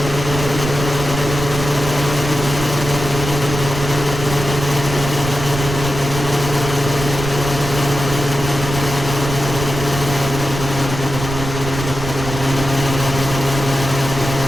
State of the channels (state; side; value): noise; right; rumble, 6 dB below the sound